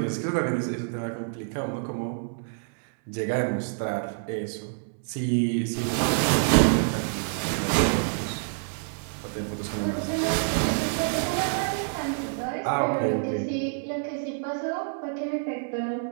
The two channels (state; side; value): silent; left; digital silence